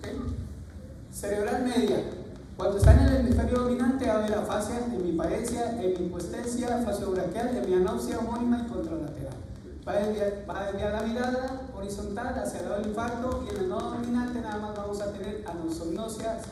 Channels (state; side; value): identical; both; correlation 1.00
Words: Cerebral media. Cuando está en el hemisferio dominante, va a haber afasia, hemiparesia, hemihipoestesia, fasiobraquial, hemianopsia homónima y contralateral. Va a desviar la mirada horizontal hacia el lado del infarto, y en el no dominante nada más vamos a tener anosognosia,